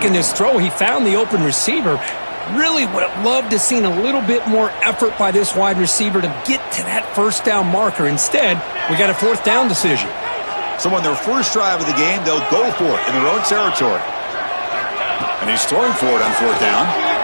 this throw. He found the open receiver. Really would have loved to have seen a little bit more effort by this wide receiver to get to that first down marker. Instead, we got a 4th down decision. So on their first drive of the game, they'll go for it in their own territory. And he's throwing for it on 4th down.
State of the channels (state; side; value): inverted; both; correlation -1.00